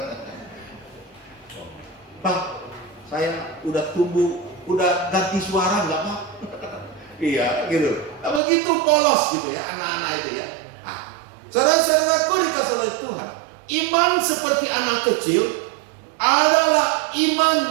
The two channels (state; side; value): drops out; left; at 8.4 s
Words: Pak, saya udah tumbuh, udah ganti suara nggak, Pak? Iya, gitu. Nah, begitu polos gitu ya anak-anak itu ya. Saudara-saudaraku dikasih oleh Tuhan, iman seperti anak kecil adalah